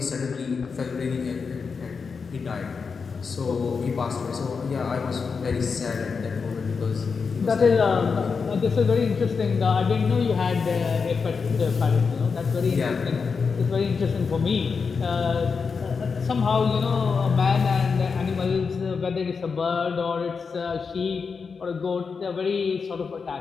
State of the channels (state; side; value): quieter; right; 5.3 dB